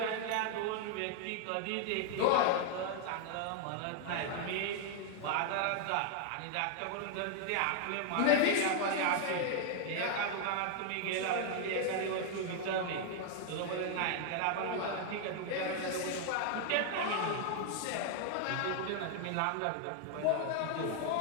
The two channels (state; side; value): different; both; correlation 0.00